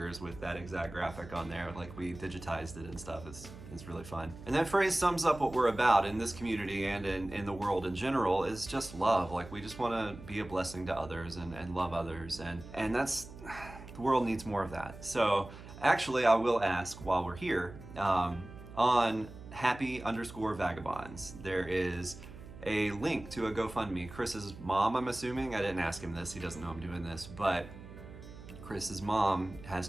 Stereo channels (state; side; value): noise; right; hum, 15 dB below the sound